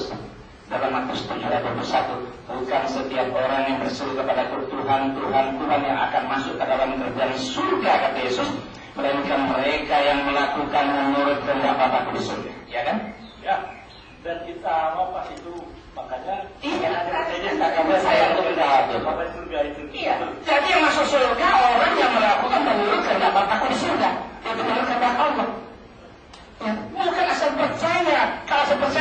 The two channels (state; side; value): identical; both; correlation 1.00